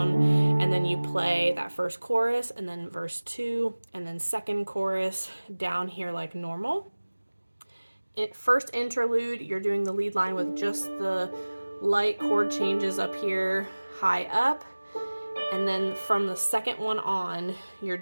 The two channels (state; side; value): inverted; both; correlation -1.00